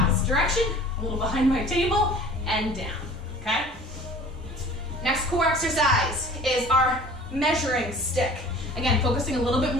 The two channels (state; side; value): normal; both; correlation 0.46